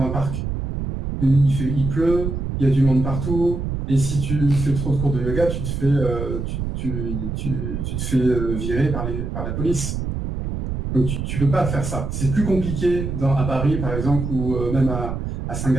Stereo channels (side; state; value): right; noise; rumble, 4 dB below the sound